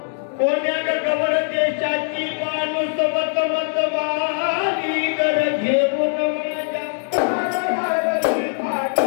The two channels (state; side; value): silent; right; digital silence